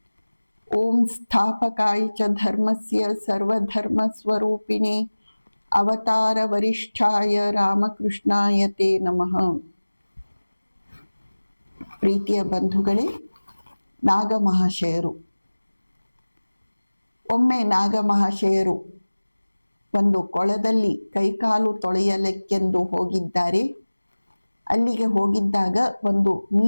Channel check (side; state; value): both; inverted; correlation -1.00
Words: ಓಂ ಸ್ಥಾಪಕಾಯ ಚ ಧರ್ಮಸ್ಯ ಸರ್ವಧರ್ಮ ಸ್ವರೂಪಿಣೆ ಅವತಾರ ವರಿಷ್ಠಾಯ ರಾಮಕೃಷ್ಣಾಯ ತೇ ನಮಃ. ಪ್ರೀತಿಯ ಬಂಧುಗಳೇ, ನಾಗಮಹಾಶಯರು. ಒಮ್ಮೆ ನಾಗಮಹಾಶಯರು ಒಂದು ಕೊಳದಲ್ಲಿ ಕೈಕಾಲು ತೊಳೆಯಲಿಕ್ಕೆಂದು ಹೋಗಿದ್ದಾರೆ. ಅಲ್ಲಿಗೆ ಹೋಗಿದ್ದಾಗ ಒಂದು